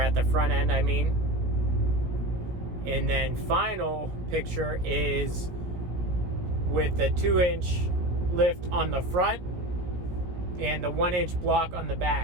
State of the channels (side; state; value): left; late; 17 ms